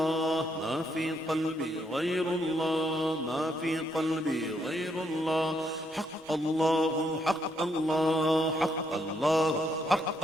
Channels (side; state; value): both; normal; correlation 0.75